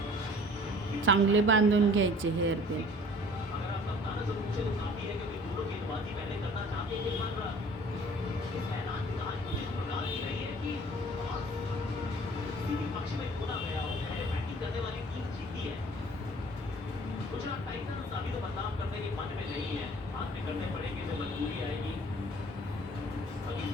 चांगले बांधून घ्यायचे हेअर पिन.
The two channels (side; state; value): both; normal; correlation 0.50